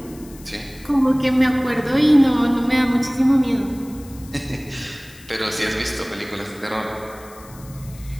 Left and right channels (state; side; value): noise; left; hiss, 22 dB below the sound